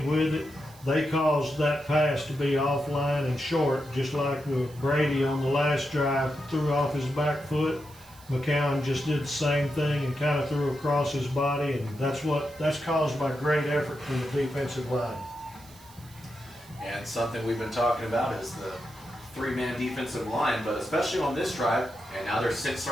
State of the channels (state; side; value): noise; right; hiss, 23 dB below the sound